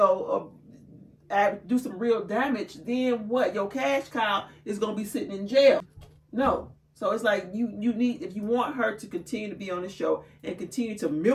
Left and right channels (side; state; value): both; identical; correlation 1.00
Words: do some real damage, then what? Your cash cow is gonna be sitting in jail. No. So it's like you need, if you want her to continue to be on the show and continue to